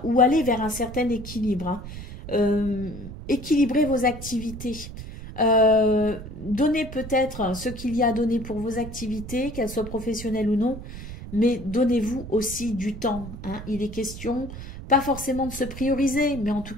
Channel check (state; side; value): noise; right; rumble, 11 dB below the sound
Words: ou aller vers un certain équilibre. Hein. Équilibrer vos activités. Donnez peut-être ce qu'il y a à donner pour vos activités, qu'elles soient professionnelles ou non, mais donnez-vous aussi du temps. Hein. Il est question pas forcément de se prioriser, mais en tout